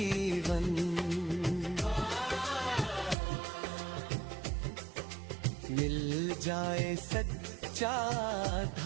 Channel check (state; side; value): drops out; left; at 3.2 s